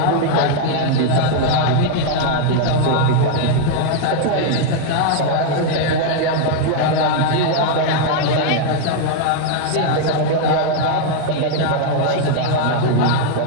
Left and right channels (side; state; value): both; different; correlation 0.00